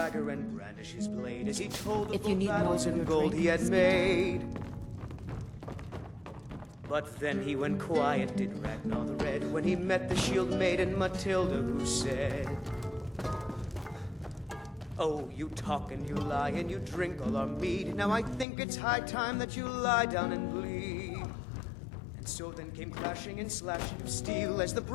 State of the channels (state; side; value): drops out; right; at 18.4 s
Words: and brandish his blade as he told of If the you need more battles of and your gold drink, he had speak. made. But then he went quiet, did Ragnar the Red, when he met the shield maiden Matilda, who said, "Oh, you talk and you lie and you drink all our mead. Now I think it's high time that you lie down and bleed." And so then came clashing and slashing of steel as the